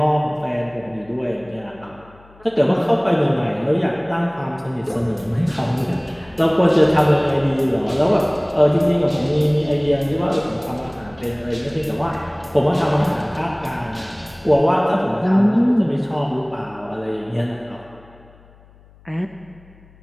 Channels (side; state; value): left; noise; hum, 26 dB below the sound